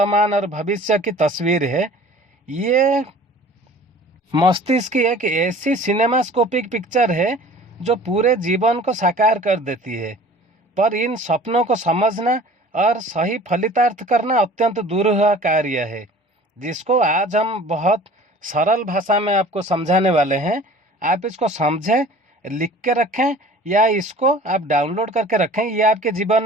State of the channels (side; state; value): both; normal; correlation 0.46